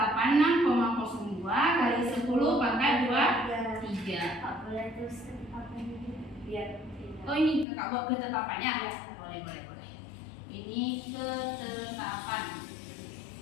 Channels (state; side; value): drops out; right; at 7.7 s